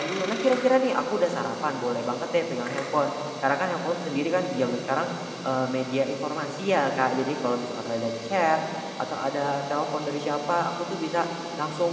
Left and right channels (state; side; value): identical; both; correlation 1.00